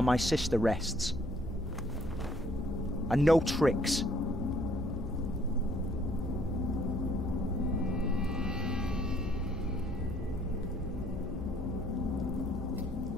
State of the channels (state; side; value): normal; both; correlation 0.63